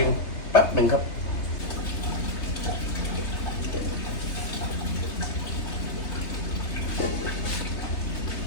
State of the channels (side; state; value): right; late; 3.3 ms